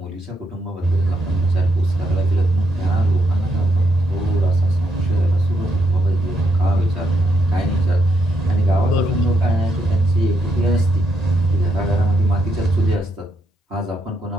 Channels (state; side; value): normal; both; correlation 0.77